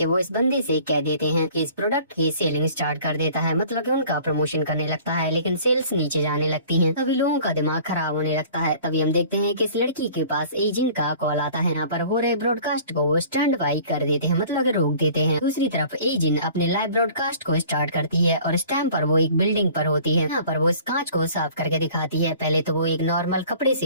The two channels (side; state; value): both; inverted; correlation -0.49